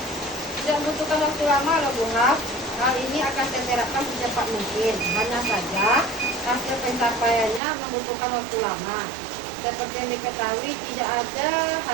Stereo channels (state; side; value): drops out; left; at 7.6 s